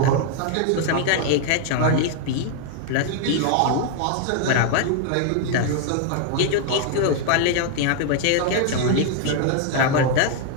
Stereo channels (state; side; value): different; both; correlation 0.00